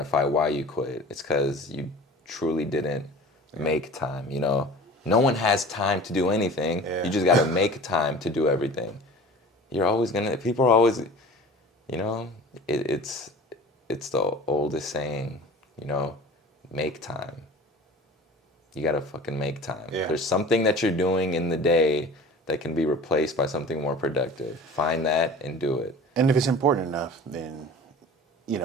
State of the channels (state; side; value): normal; both; correlation 0.41